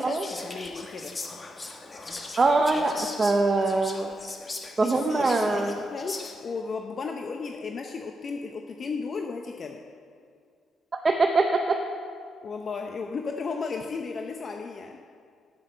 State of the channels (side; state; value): both; normal; correlation 0.85